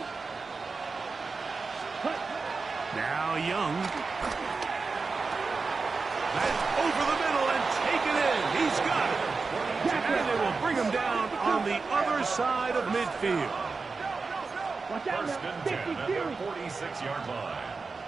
Cut. Now Young. That's over the middle and taken in. He's got it. And they will bring him down on the other side of midfield. Watch out now. 52. 46-yard line.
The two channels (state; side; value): quieter; left; 4.4 dB